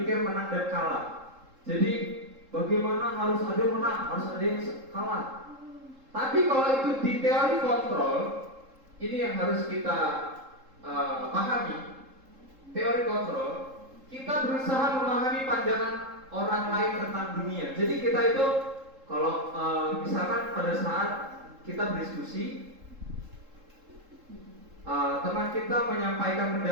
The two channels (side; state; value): left; late; 3.7 ms